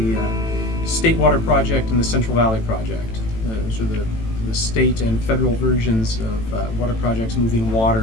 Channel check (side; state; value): right; late; 18 ms